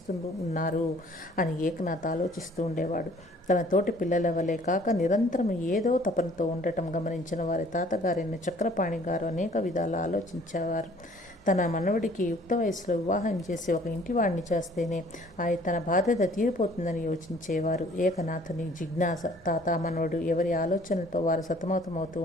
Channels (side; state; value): both; normal; correlation 0.55